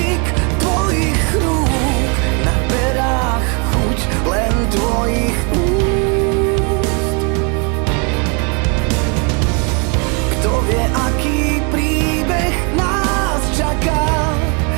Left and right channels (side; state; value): left; quieter; 34.8 dB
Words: tvojich rúk, na perách chuť len tvojich úst. Kto vie, aký príbeh nás čaká,